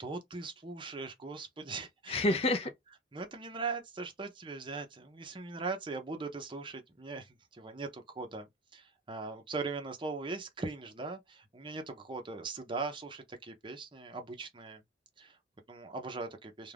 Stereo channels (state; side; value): normal; both; correlation 0.29